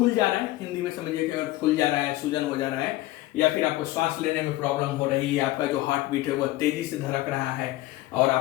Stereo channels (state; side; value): quieter; right; 17.1 dB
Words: जा रहा है, हिंदी में समझिए कि फूल जा रहा है, सूजन हो जा रहा है, या फिर आपको सांस लेने में प्रॉब्लम हो रही है, आपका जो हार्ट बीट है वो तेजी से धड़क रहा है, और